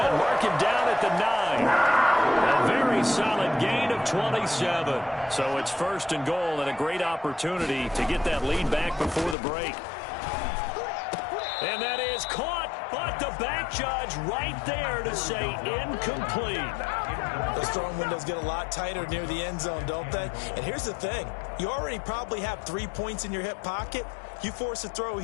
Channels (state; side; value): drops out; right; at 9.3 s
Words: Mark him down at the 9. A very solid gain of 27. So it's 1st and goal and a great opportunity to get that lead back before the break. And that is caught, but the back judge right there to say incomplete. Those throwing windows get a lot tighter near the end zone, don't they? And here's the thing. You already probably have 3 points in your hip pocket. You force a throw